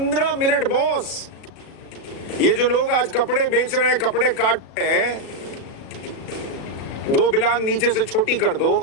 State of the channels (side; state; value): right; late; 36 ms